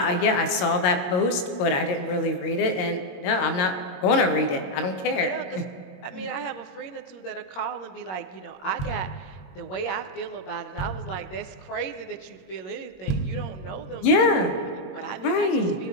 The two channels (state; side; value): late; right; 22 ms